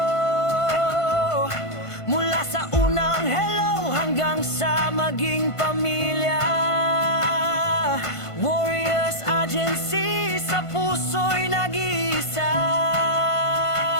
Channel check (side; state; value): right; late; 1.5 ms